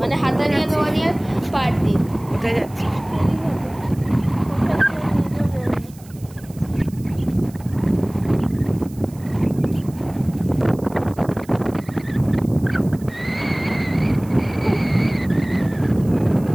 মানে হাতানিয়া দোয়ানিয়ার পার দিয়ে। কোথায় যাচ্ছি?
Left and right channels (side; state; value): right; noise; hiss, 24 dB below the sound